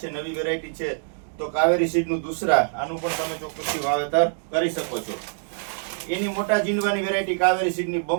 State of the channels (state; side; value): silent; left; digital silence